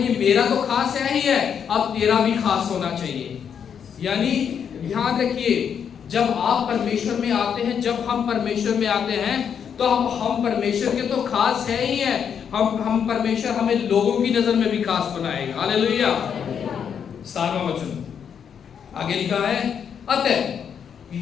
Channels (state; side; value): quieter; right; 7.7 dB